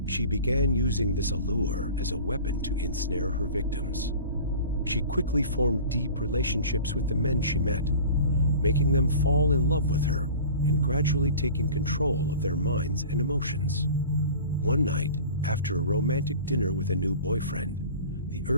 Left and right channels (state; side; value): inverted; both; correlation -0.40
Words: She began using this allure as a weapon to ensnare her victims. She quickly formed deep relationships with the men she met, making them fall in love with her and gradually taking control of their minds and emotions. One night, after a romantic dinner with a new boyfriend, the